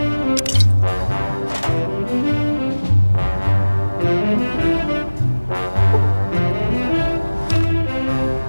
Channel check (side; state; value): both; inverted; correlation -1.00